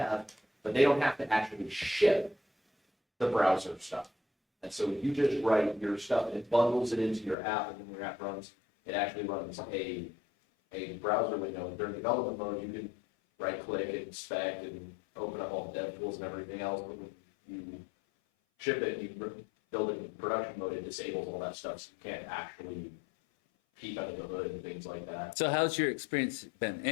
but they don't have to actually ship the browser stuff. And so you just write your stuff and it bundles it into your app, and when your app runs, it actually runs a browser window. And during development mode, you can right click and inspect and open up all the dev tools and everything else. But when you ship it, you build it in production mode, it disables all that stuff, so you can't actually peek under the hood and things like that. So how's your experience been?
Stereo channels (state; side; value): drops out; right; at 7.4 s